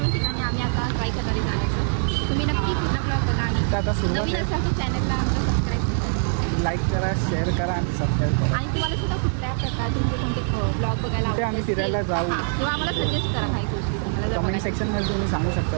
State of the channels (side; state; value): left; silent; digital silence